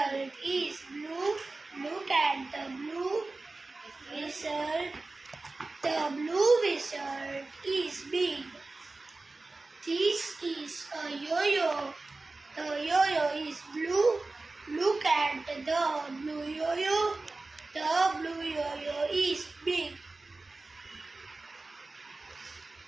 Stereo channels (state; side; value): quieter; left; 3.4 dB